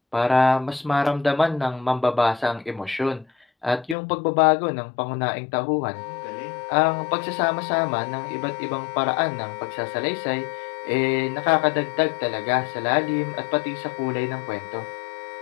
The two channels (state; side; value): drops out; right; at 4.0 s